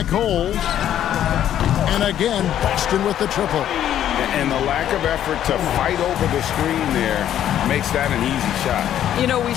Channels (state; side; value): quieter; right; 10.9 dB